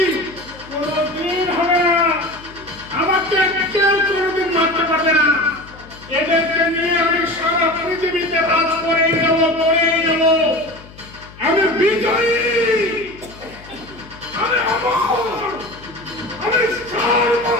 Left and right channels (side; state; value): left; noise; hum, 20 dB below the sound